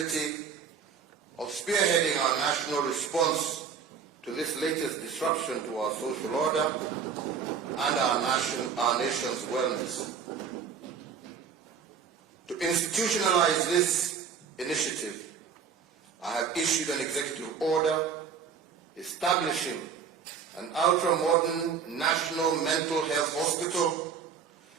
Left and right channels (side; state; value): left; quieter; 6.6 dB